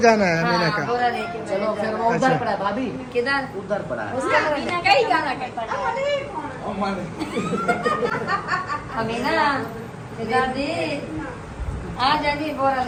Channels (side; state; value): both; identical; correlation 1.00